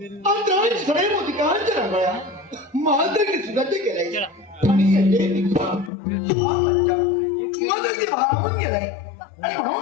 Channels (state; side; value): drops out; right; at 5.9 s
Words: अंतराळ सडे मोतिकांच्या रंगळ्या महातरी सुगंध केलाय आणि येते पिका हा बच्चा मदती भारावून गेलाय आणि